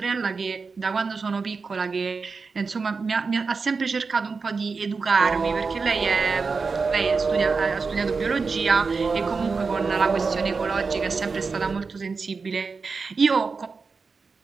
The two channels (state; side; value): quieter; left; 4.7 dB